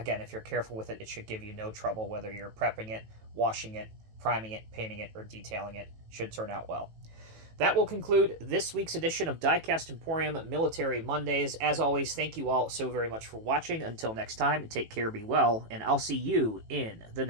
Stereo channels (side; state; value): left; late; 18 ms